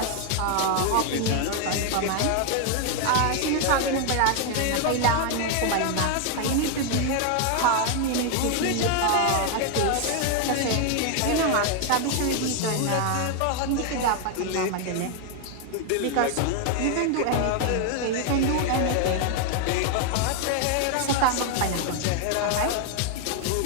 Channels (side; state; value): both; different; correlation 0.01